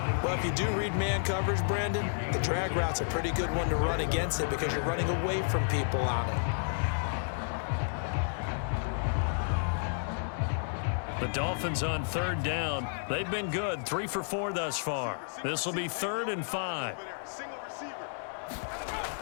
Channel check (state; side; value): silent; right; 57 dB below the other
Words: Well, if you do read man coverage, Brandon, the drag route's a pretty good one to run against it because you're running away from people on it. The Dolphins on 3rd down. They've been good, 3 for 4 thus far. This will be 3rd and 5.